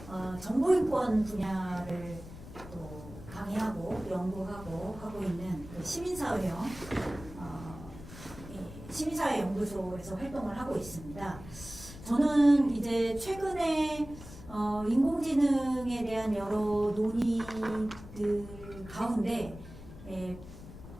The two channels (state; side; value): noise; left; rumble, 15 dB below the sound